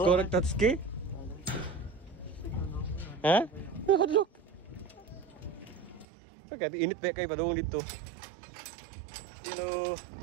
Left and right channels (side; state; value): left; drops out; at 6.1 s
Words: Korek Tatsuki? Ha? Hadlok. Pagkat init pa kayo padung dito. Hello.